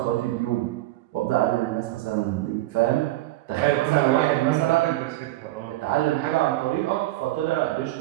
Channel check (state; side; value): quieter; left; 16.9 dB